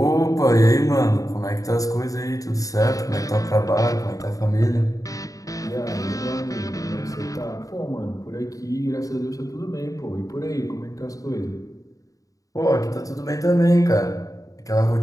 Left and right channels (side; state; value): right; late; 0.17 ms